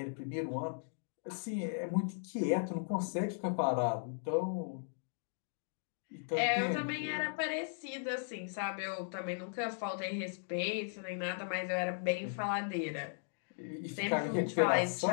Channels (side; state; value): right; silent; digital silence